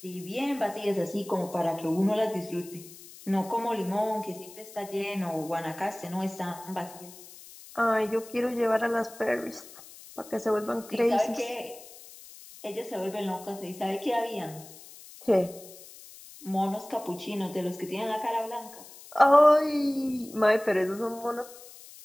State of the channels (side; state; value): left; noise; hiss, 18 dB below the sound